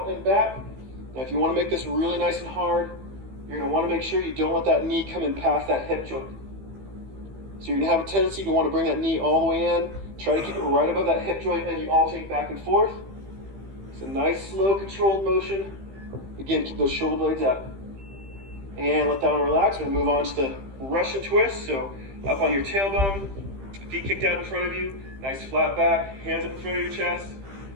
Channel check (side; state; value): left; late; 15 ms